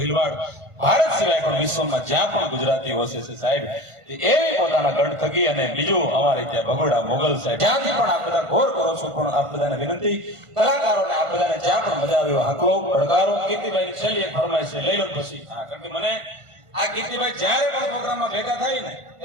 ભારત સિવાય પણ વિશ્વમાં જ્યાં પણ ગુજરાતી વસે છે સાહેબ એવી પોતાના ગઢ થકી અને બીજું અમારે ત્યાં ભગોડા મોગલ સાહેબ જ્યાંથી પણ આપ બધા ઘોર કરો છો પણ આપ બધાને વિનંતી કલાકારોને આપ બધાને જ્યાં પણ મજા આવે હાકલો પડકારો કીર્તિભાઈ છેલ્લી એક ફરમાઈશ છે લઈ લો પછી હા કારણ કે મને આ કીર્તિભાઈ જ્યારે પણ પ્રોગ્રામમાં ભેગા થાય ને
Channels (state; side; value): late; left; 1.5 ms